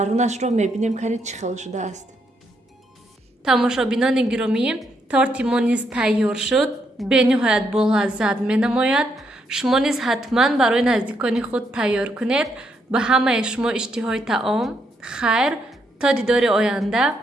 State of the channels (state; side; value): normal; both; correlation 0.77